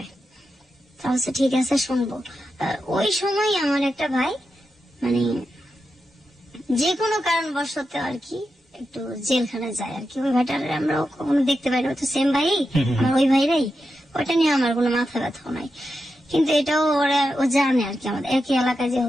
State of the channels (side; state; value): both; normal; correlation 0.88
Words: তাহলে ঠিক আছে শুনবো। ওই সময় আমার একটা ভাই মানে যে কোনো কারণবশত আর কি একটু জেলখানায় যায় আর কি। ওই ভাইটার আমরা কখনো দেখতে পাই না, তো সেম ভাই আমার ওই ভাইরাই। ওইটা নিয়ে আমার কোনো মাথা ব্যথাও নাই, কিন্তু এটাও ও জানে আর কি, আমাদের একই এলাকায়